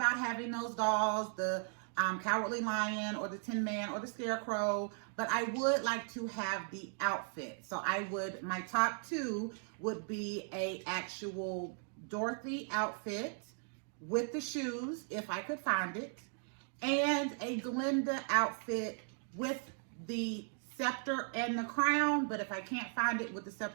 having those dolls, the Cowardly Lion or the Tin Man or the Scarecrow, but I would like to have the outfit. So my top two would be a actual Dorothy outfit with the shoes, if I could find it, and a Glinda outfit with the scepter and the crown. But if I can't find it with the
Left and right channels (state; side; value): silent; left; 53 dB below the other